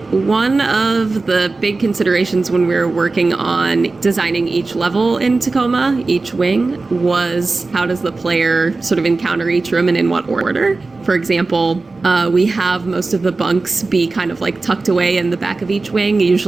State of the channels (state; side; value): quieter; left; 3.6 dB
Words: One of the big considerations when we were working on designing each level in Tacoma, each wing, was how does the player sort of encounter each room and in what order? For example, we have most of the bunks be kind of tucked away in the back of each wing,